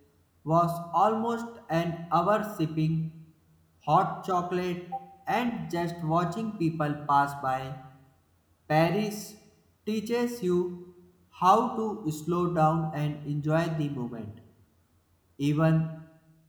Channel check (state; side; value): identical; both; correlation 1.00